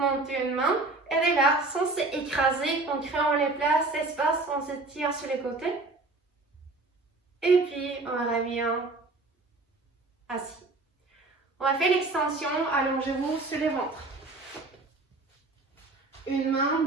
une main. Et de là, sans s'écraser, en créant les places, espace, on se tire sur les côtés. Et puis, on revient assis. On va faire l'extension, allongez-vous sur le ventre. Une main,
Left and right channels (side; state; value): left; quieter; 3.3 dB